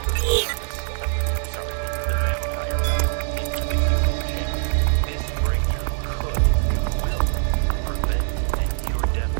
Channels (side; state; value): left; silent; 58 dB below the other